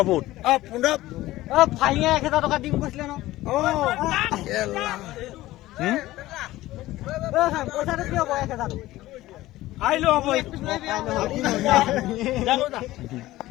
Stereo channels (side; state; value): right; quieter; 16.8 dB